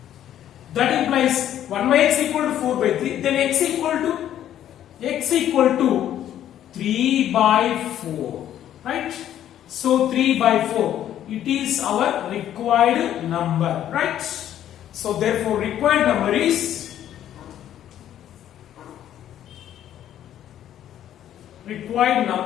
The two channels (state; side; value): quieter; right; 11.2 dB